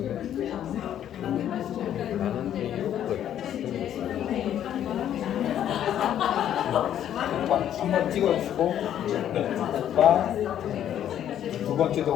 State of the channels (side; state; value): right; quieter; 10.6 dB